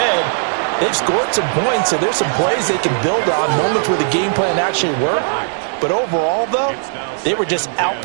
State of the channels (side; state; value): left; silent; 64 dB below the other